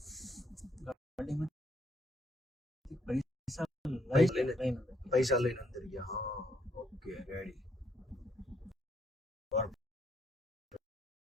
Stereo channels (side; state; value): both; normal; correlation 0.71